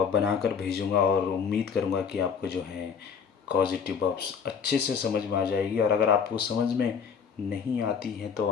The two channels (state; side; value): quieter; right; 6.5 dB